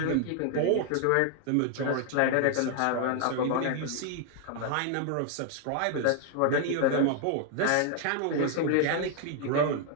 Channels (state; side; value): different; both; correlation 0.00